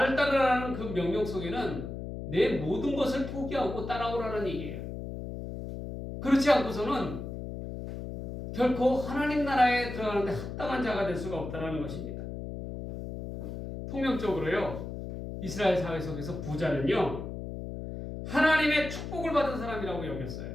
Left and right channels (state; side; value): noise; left; hum, 7 dB below the sound